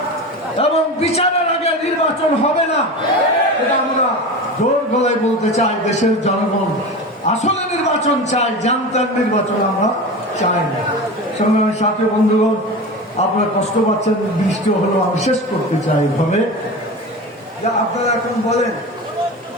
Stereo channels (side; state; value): both; normal; correlation 0.28